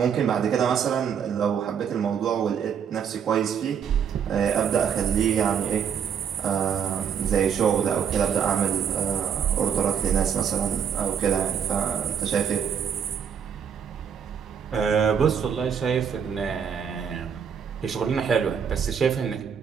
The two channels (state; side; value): quieter; left; 7.7 dB